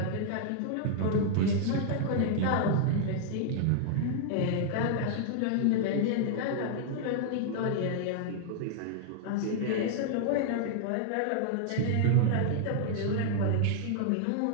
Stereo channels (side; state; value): both; different; correlation -0.01